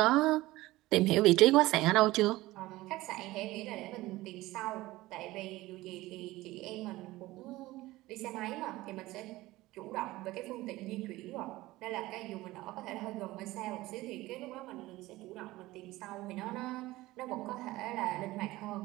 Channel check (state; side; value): quieter; left; 18.3 dB